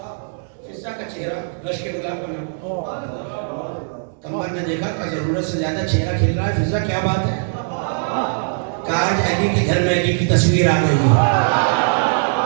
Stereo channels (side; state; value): left; silent; 66 dB below the other